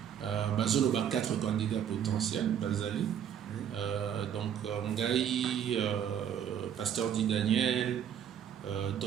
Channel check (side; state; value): left; quieter; 9.0 dB